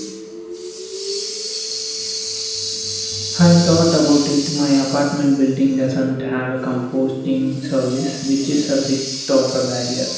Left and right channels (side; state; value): both; identical; correlation 1.00